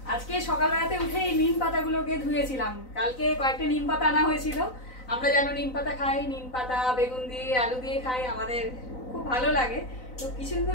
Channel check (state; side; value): late; right; 4.0 ms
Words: আজকে সকালবেলাতে উঠেই নিম পাতাগুলোকে ধুয়েছিলাম। কালকে কয়েকটা নিম পাতা আনা হয়েছিল। আমরা যেন নিম পাতা খাই, নিম পাতা বেগুন দিয়ে আলু দিয়ে খাই, আমাদের খুব ভালো লাগে। তো কিছুদিন